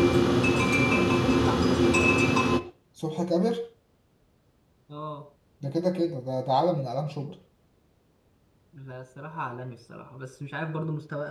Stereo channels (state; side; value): identical; both; correlation 1.00